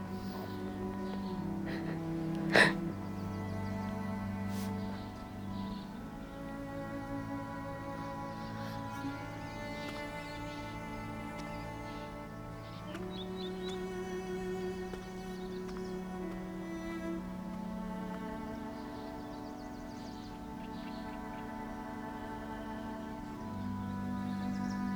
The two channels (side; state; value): both; identical; correlation 1.00